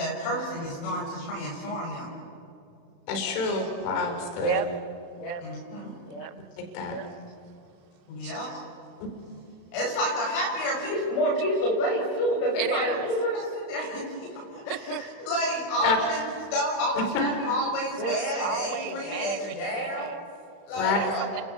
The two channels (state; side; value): late; right; 35 ms